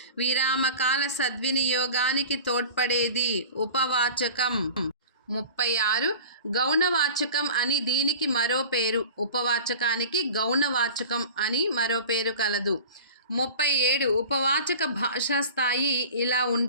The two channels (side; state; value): both; inverted; correlation -0.38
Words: విరామకాల సద్వినియోగానికి తోడ్పడేది. ఉపవాచకం. 36. గౌణవాచకం అని దీనికి మరో పేరు. ఉపవాచకానికి గౌణవాచకం అని మరో పేరు కలదు. 37. ఉపవాచక భాషా స్థాయి ఇలా